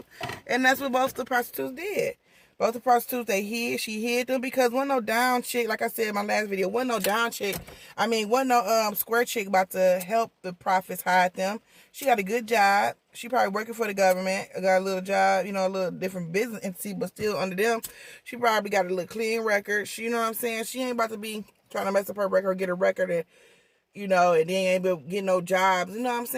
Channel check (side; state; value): both; identical; correlation 1.00